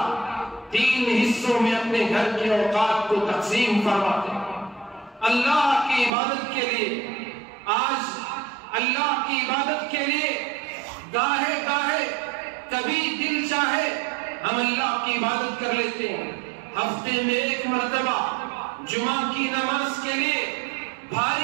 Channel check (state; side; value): drops out; left; at 6.1 s